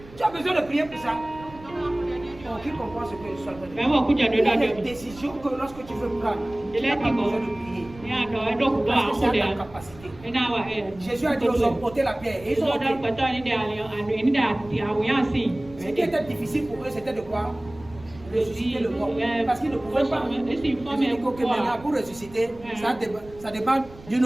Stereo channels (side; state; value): right; noise; rumble, 20 dB below the sound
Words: tu as besoin de prier pour ça. Qui comprend ce que je suis en train de dire? Il y a des décisions que lorsque tu veux prendre, tu n'as pas besoin de prier. Parce que c'est à ta capacité. Jésus a dit aux hommes, ôtez la pierre. Et ils ont ôté. Ce qui était difficile pour eux, c'était de quoi? Ressusciter le mort. Parce qu'ils ne pouvaient pas. Jésus dit que maintenant, pour ressusciter, ça dépend d'une